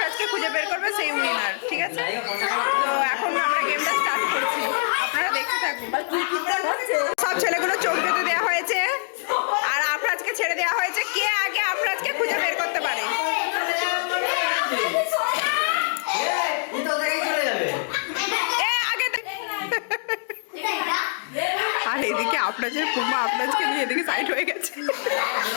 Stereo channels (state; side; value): silent; right; digital silence